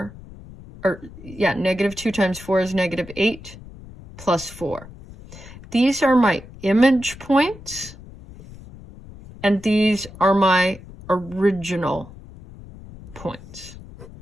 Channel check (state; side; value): noise; left; rumble, 17 dB below the sound